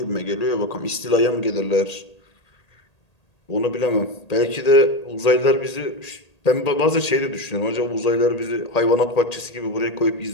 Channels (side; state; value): right; late; 1.8 ms